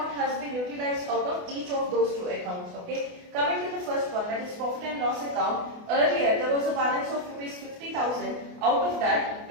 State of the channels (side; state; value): left; late; 28 ms